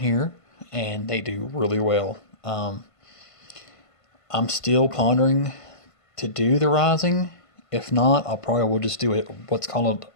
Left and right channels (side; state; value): right; late; 1.5 ms